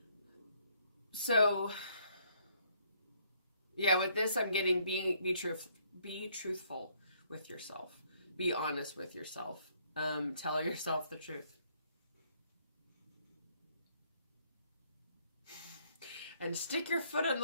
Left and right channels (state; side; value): inverted; both; correlation -0.67